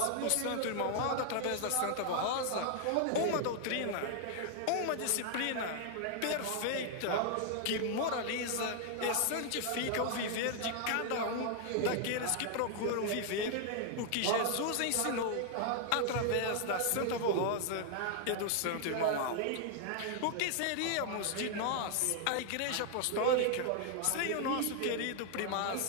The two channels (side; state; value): both; different; correlation 0.00